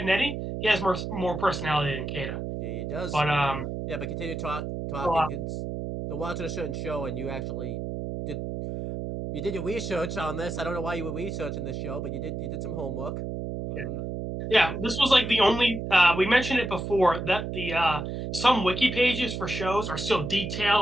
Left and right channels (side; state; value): right; noise; hum, 5 dB below the sound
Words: Eddie, he has more personality than Kata. Yeah, he does. But Yeah, but continue talking. well, They're watching a certain show, and you actually did you did your research on this. I don't know why you were researching this show, but you did some homework. yeah, this was like the only. We mentioned it before that the some wiki pages for shows are so